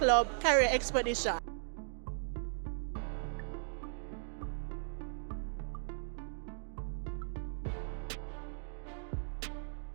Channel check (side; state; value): left; silent; digital silence